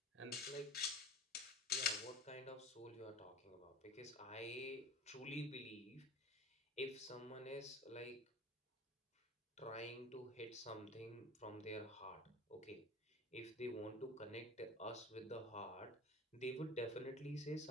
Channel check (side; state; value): both; normal; correlation 0.36